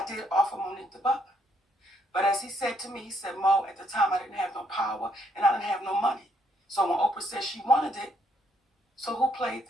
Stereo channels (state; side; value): normal; both; correlation 0.71